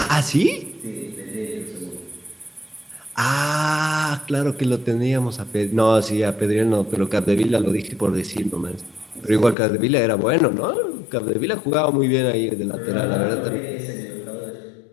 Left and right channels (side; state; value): right; drops out; at 9.6 s